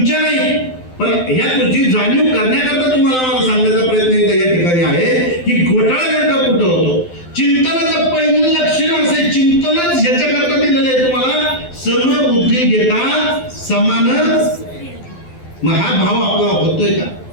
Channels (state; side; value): late; right; 12 ms